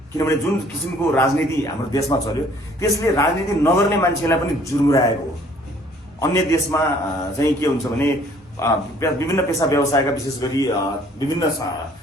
किनभने जुन किसिमको राजनीति हाम्रो देशमा चल्यो त्यसले राजनीति नगर्ने मान्छेलाई पनि जुर्मुराएको हो। अन्य देशमा चाहिँ के हुन्छ भने विभिन्न पेशा व्यवसायका विशेष गरी विभिन्न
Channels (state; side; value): normal; both; correlation 0.58